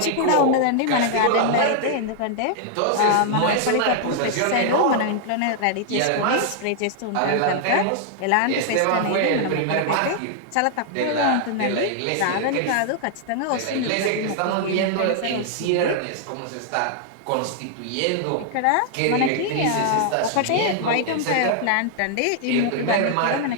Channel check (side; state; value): both; different; correlation -0.01